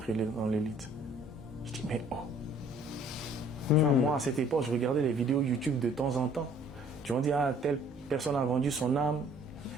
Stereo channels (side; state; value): both; normal; correlation 0.57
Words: dans l'élite. Je dis, mais oh. Tu vois, moi, à cette époque, je regardais les vidéos YouTube de temps en temps. Tu vas dire, ah, telle personne a vendu son âme,